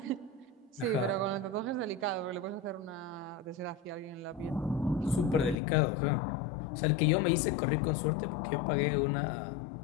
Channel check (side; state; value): right; drops out; at 5.6 s